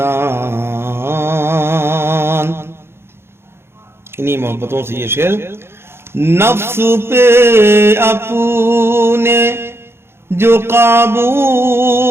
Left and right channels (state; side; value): late; left; 0.12 ms